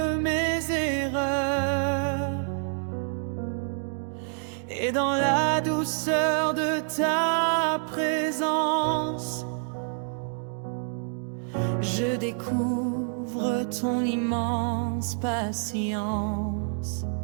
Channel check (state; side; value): silent; left; 60 dB below the other